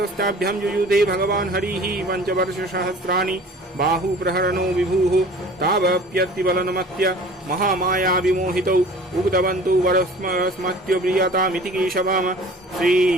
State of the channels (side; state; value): both; normal; correlation 0.45